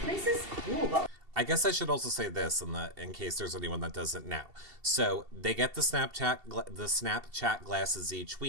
is cool, but I guess I should also say this in case there's anyone that doesn't know. So they get the Snapchat glasses each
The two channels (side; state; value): left; late; 2.7 ms